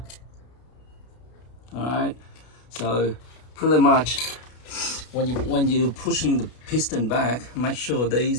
All right. So pretty much, when you're pushing the piston back, make sure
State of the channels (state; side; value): late; right; 32 ms